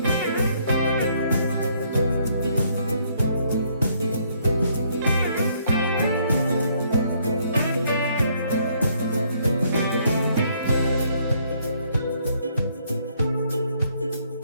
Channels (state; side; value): inverted; both; correlation -0.68